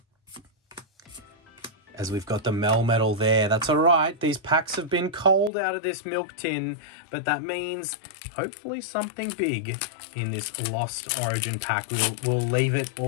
As we've got the Melmetal there. That's all right. These packs have been cold out of this milk tin, but that means hopefully something big in this Lost Origin pack. We'll leave it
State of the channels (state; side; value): drops out; right; at 5.5 s